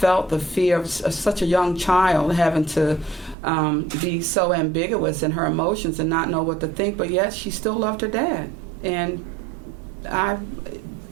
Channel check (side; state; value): left; drops out; at 3.4 s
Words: the fear of such a young child having to be so ambiguous in her emotions and not know what to think, but yet she still loved her dad. And